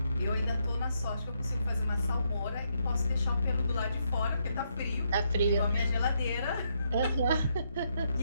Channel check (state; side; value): inverted; both; correlation -0.77